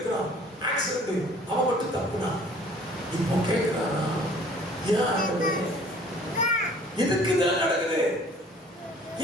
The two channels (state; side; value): normal; both; correlation 0.53